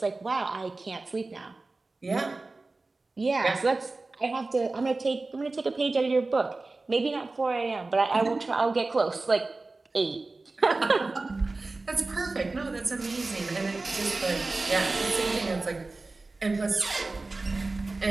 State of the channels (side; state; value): left; quieter; 3.4 dB